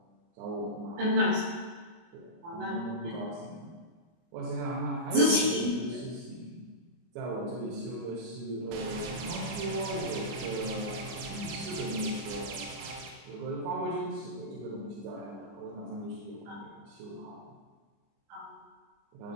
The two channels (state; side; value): late; left; 24 ms